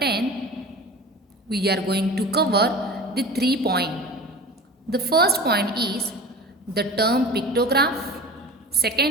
we are going to cover the 3 points. The first point is the term pictograph,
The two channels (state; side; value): normal; both; correlation 0.36